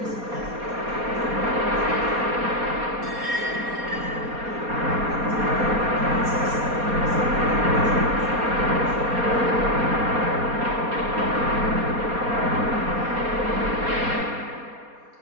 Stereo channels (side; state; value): left; late; 4.2 ms